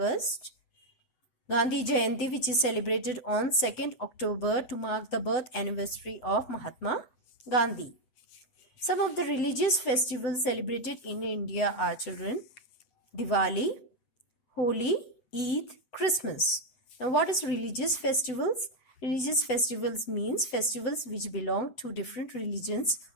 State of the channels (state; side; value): late; right; 7.9 ms